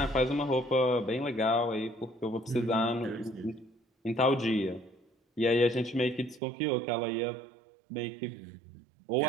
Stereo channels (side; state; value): left; drops out; at 6.4 s